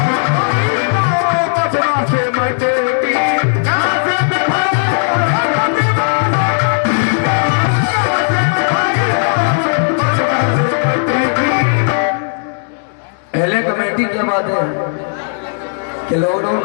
पहले कमेटी क्या बात है कि लॉकडाउन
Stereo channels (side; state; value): right; silent; digital silence